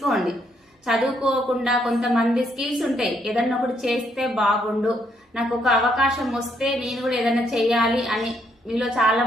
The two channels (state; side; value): normal; both; correlation 0.73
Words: చదువుకోకుండా కొంతమంది స్కిల్స్ ఉంటాయి, ఏదన్నా ఒకటి చేస్తే బాగుండు, నాకు ఒక అవకాశం వస్తే నేను కూడా ఏదన్నా చేయాలి అని మీలో చాలా